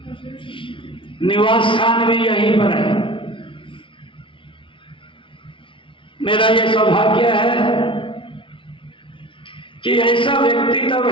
निवास स्थान भी यहीं पर है। मेरा यह सौभाग्य है कि ऐसा व्यक्ति तब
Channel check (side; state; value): right; late; 0.25 ms